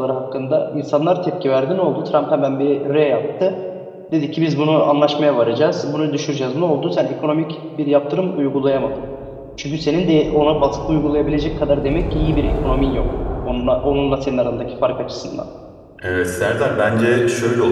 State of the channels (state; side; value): identical; both; correlation 1.00